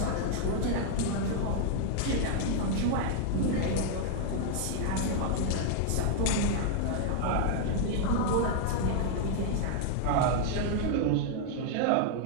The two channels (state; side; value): different; both; correlation 0.00